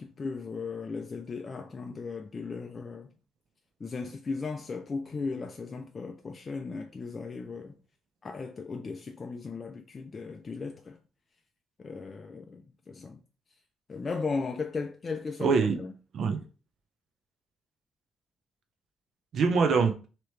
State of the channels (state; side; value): normal; both; correlation 0.76